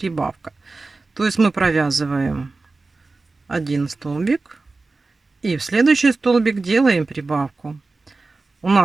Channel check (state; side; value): quieter; left; 3.6 dB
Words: То есть мы провязываем 1 столбик и в следующий столбик делаем прибавку. У